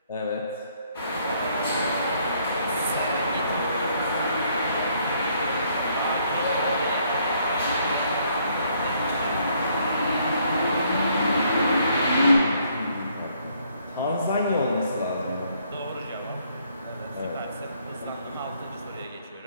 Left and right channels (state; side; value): inverted; both; correlation -0.68